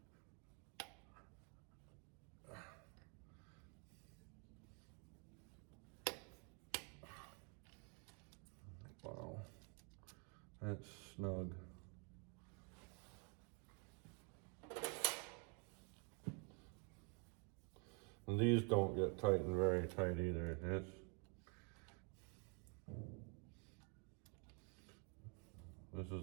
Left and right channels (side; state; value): left; quieter; 36.3 dB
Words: Wow, that's snug. And these don't get tightened very tight either. This